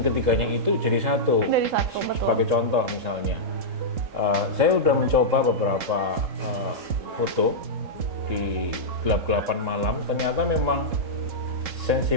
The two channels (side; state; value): left; late; 3.7 ms